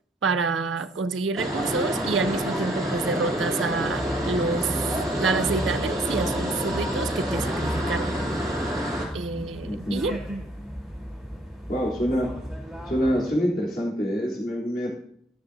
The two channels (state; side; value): normal; both; correlation 0.63